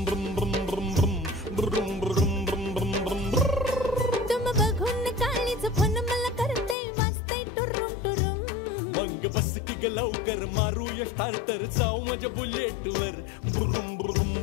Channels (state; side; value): drops out; right; at 6.8 s